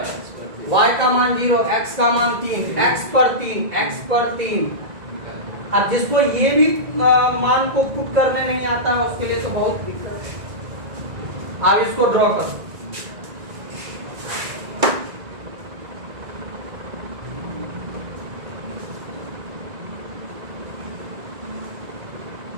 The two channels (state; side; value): late; left; 1.9 ms